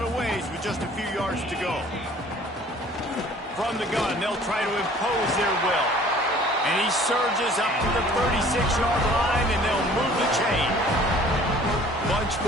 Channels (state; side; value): normal; both; correlation 0.52